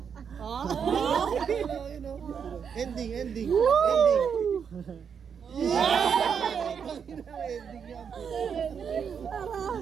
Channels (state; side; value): quieter; left; 7.0 dB